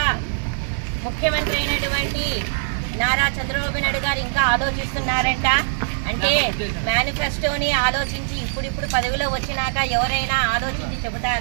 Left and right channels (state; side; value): silent; left; digital silence